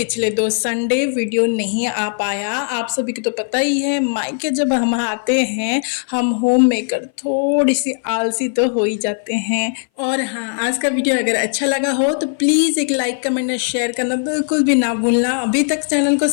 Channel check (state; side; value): silent; right; 60 dB below the other